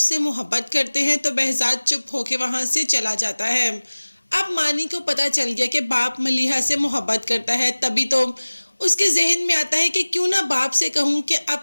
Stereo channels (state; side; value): inverted; both; correlation -1.00